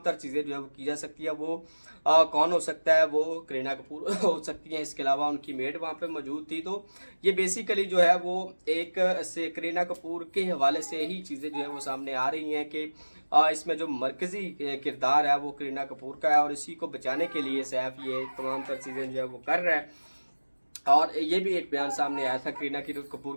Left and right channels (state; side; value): inverted; both; correlation -1.00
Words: تر چیزیں جو ہے وہ کی جا سکتی ہے۔ وہ کون ہو سکتا ہے؟ وہ کرینہ کپور ہو سکتی ہیں، اس کے علاوہ ان کی میڈ وہاں پہ موجود تھی۔ تو یہ بیسیکلی جو ہے وہ ایک سے کرینہ کپور کے حوالے سے ہی چیزیں جو ہے وہ سامنے آ رہی ہیں کہ اس میں جو مرکزی کردار ہے وہ کرینہ کپور کا ہے، اور اسی کو بچانے کے لیے سیف یہ تمام تر چیزیں جو ہے وہ کر رہا ہے۔ اور یہ بھی ایک بیان سامنے آیا تھا کرینہ